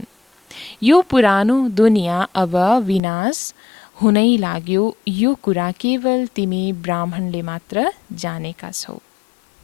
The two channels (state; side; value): drops out; right; at 3.0 s